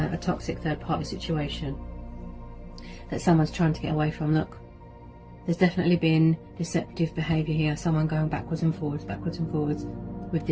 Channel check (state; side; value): identical; both; correlation 1.00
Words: toxic third party situation that someone's trying to get away from. Look, there's definitely been deceptive behaviour here, someone going backwards and forwards with